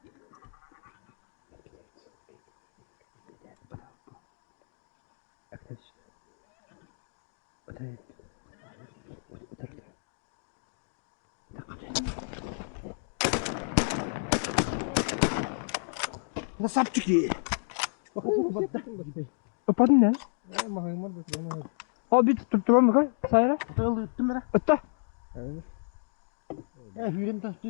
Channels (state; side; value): silent; right; digital silence